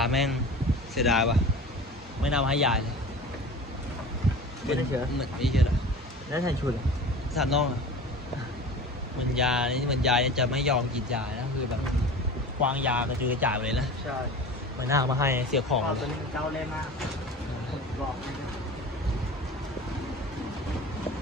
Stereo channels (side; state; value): both; normal; correlation 0.37